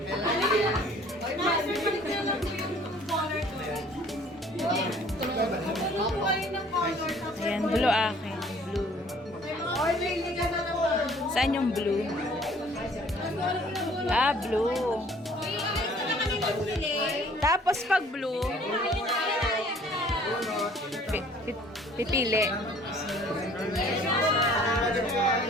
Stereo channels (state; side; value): normal; both; correlation 0.55